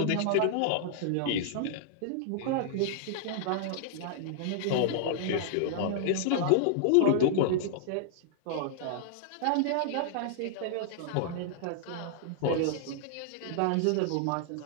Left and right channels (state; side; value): different; both; correlation -0.01